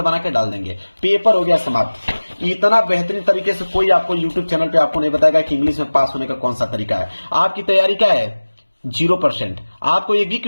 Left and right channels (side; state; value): both; inverted; correlation -1.00